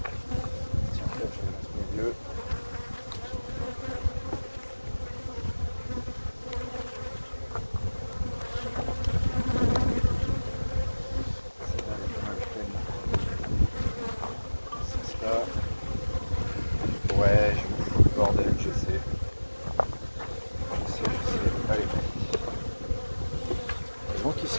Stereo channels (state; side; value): inverted; both; correlation -1.00